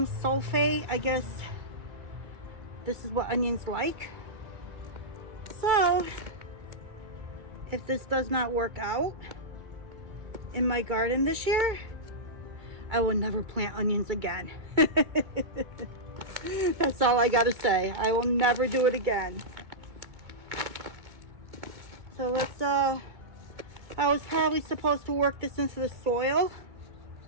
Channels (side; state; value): left; late; 2.2 ms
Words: sulfate. I guess this is what onions like. So if this does not work out in my garden this year, I will never plant onions again. That's all I gotta say. I will never do it again. So let's, I was probably supposed to work this into the soil,